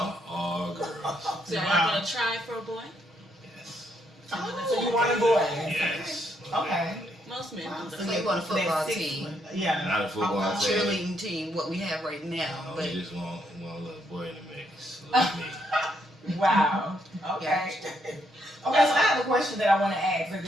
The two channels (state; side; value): normal; both; correlation 0.75